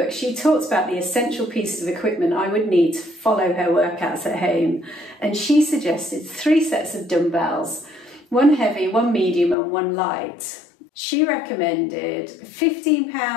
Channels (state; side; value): drops out; right; at 9.6 s